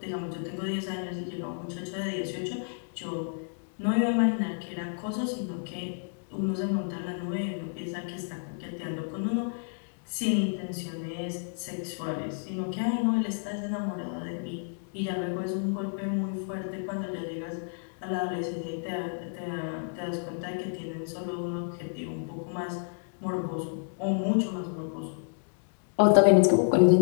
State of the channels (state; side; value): silent; right; digital silence